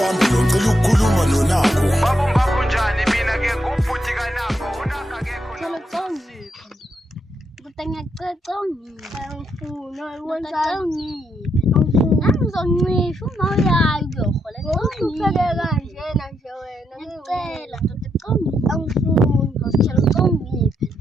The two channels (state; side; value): normal; both; correlation 0.79